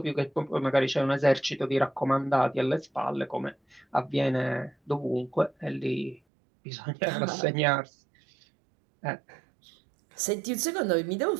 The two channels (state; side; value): drops out; left; at 6.2 s